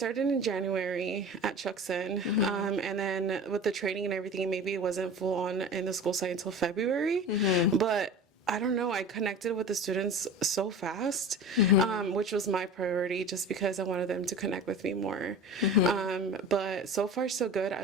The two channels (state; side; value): normal; both; correlation 0.35